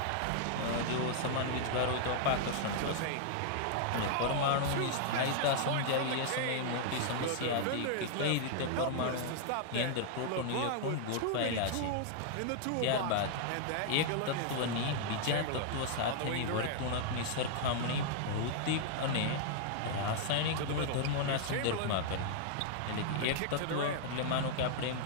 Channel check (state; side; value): different; both; correlation -0.01